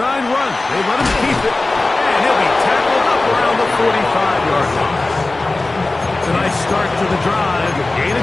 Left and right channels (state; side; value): quieter; right; 3.1 dB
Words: run. They let him keep it, and he'll be tackled up around the 45-yard line. It's a nice start to the drive. Gain